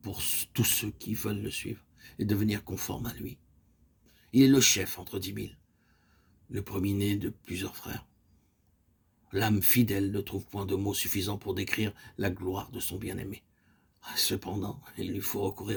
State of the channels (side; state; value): both; identical; correlation 1.00